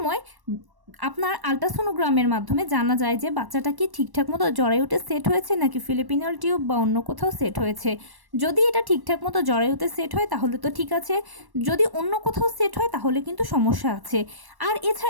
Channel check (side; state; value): left; late; 1.1 ms